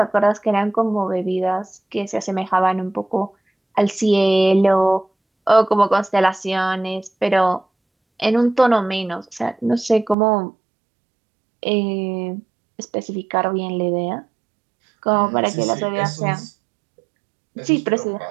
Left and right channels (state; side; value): drops out; left; at 10.2 s